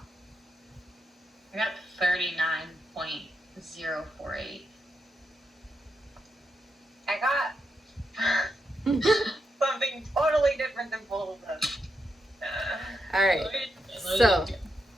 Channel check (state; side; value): normal; both; correlation 0.83